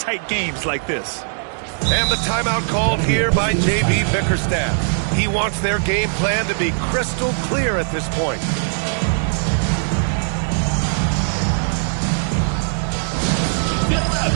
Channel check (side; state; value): left; silent; digital silence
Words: games like this. And the timeout called here by JB Bickerstaff. He wants their game plan to be crystal clear at this point.